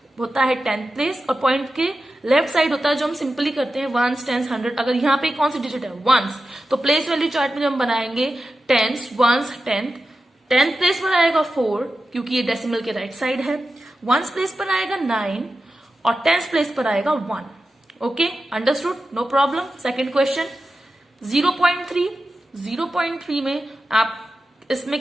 होता है 10th प्लेस और पॉइंट के लेफ्ट साइड होता है जो हम सिंपली करते हैं 1s, 10s, 100. अगर यहाँ पे कौन सी डिजिट है? 1s. तो प्लेस वैल्यू चार्ट में जब हम बनाएंगे 10s, 1s, 10th प्लेस पर आएगा 4 क्योंकि ये डेसिमल के राइट साइड है. 1s प्लेस पर आएगा 9 और 10th प्लेस पर आएगा 1. Okay, understood, no problem. Second question 0.3. 0.3 में आप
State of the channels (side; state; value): both; normal; correlation 0.92